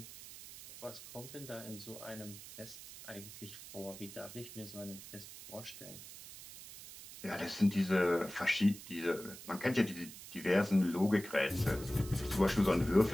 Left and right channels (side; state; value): right; noise; hiss, 14 dB below the sound